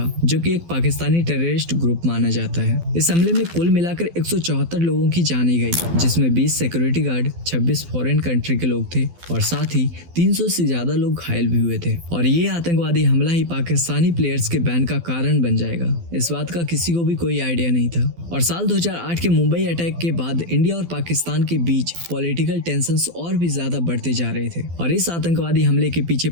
जो कि एक पाकिस्तानी टेररिस्ट ग्रुप माना जाता है। इस हमले में कुल मिलाकर 174 लोगों की जाने गई, जिसमें 20 सिक्योरिटी गार्ड, 26 फॉरेन कंट्री के लोग थे और साथ ही 300 से ज्यादा लोग घायल भी हुए थे। और ये आतंकवादी हमला ही पाकिस्तानी प्लेयर्स के बैन का कारण बन जाएगा, इस बात का किसी को भी कोई आइडिया नहीं था। और साल 2008 के मुंबई अटैक के बाद इंडिया और पाकिस्तान के बीच पॉलिटिकल टेंशंस और भी ज्यादा बढ़ते जा रहे थे और इस आतंकवादी हमले के पीछे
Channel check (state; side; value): late; left; 12 ms